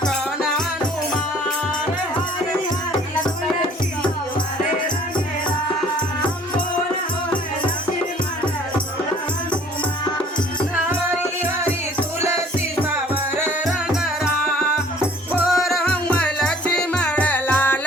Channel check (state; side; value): normal; both; correlation 0.54